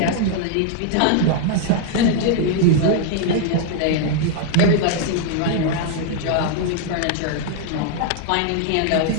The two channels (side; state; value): both; different; correlation 0.00